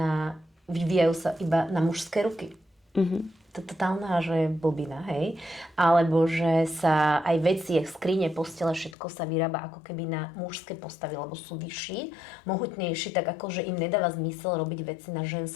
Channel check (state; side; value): drops out; right; at 9.0 s